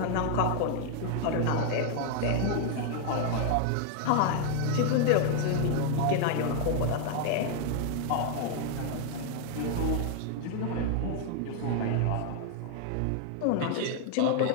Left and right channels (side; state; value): both; different; correlation 0.00